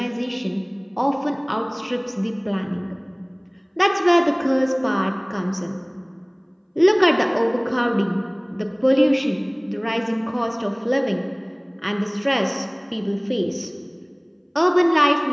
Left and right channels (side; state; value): both; identical; correlation 1.00